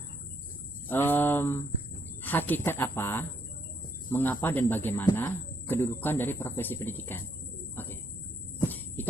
hakikat apa, mengapa dan bagaimana kedudukan dari profesi pendidikan? Oke,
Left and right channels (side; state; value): both; normal; correlation 0.72